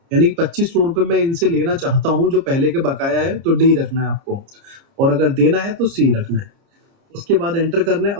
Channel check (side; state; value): left; late; 30 ms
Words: यानी कि 2500 रुपए मैं इनसे लेना चाहता हूँ जो पहले के बकाया है, तो डी रखना है आपको, और अगर देना है तो सी रखना है। उसके बाद एंटर करना है।